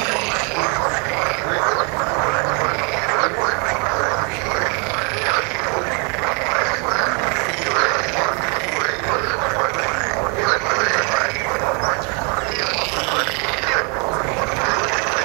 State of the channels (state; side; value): quieter; left; 35.2 dB